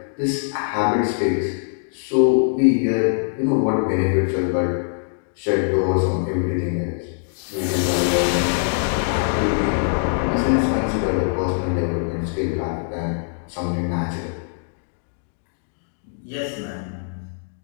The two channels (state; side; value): silent; right; digital silence